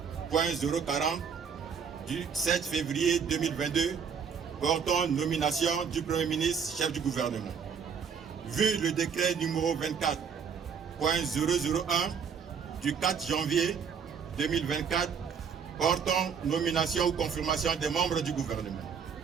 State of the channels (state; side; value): quieter; left; 6.7 dB